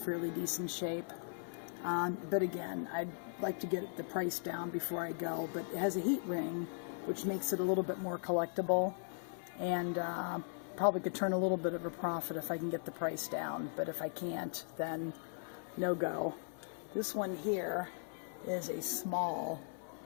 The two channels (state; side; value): silent; right; 52 dB below the other